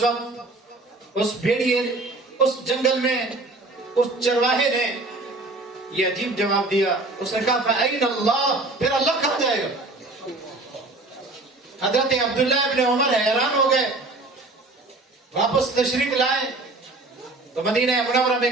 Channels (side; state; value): left; quieter; 3.1 dB